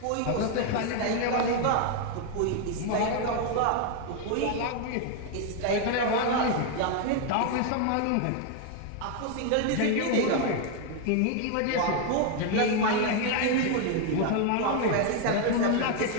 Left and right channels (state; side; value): different; both; correlation 0.01